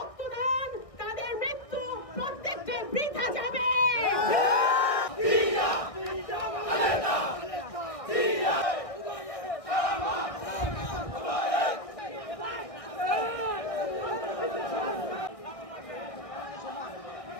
তাদের মৃত্যু প্রত্যেকটি বৃথা যাবে।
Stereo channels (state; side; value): late; right; 1.6 ms